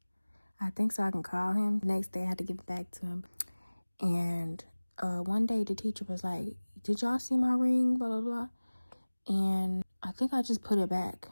I think so I can call him. The next day I had to give it back to him. And one day the teacher was like, did y'all see my ring? Blah, blah, blah. And I think I just put it back.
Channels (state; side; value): inverted; both; correlation -1.00